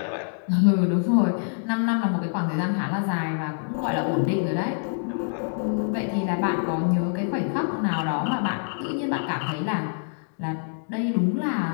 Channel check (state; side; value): silent; right; digital silence